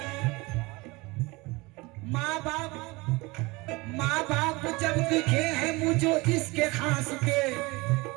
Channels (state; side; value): quieter; left; 23.9 dB